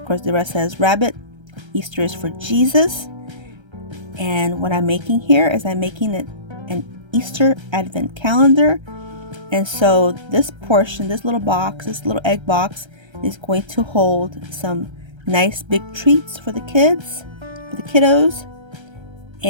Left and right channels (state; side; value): late; left; 1.3 ms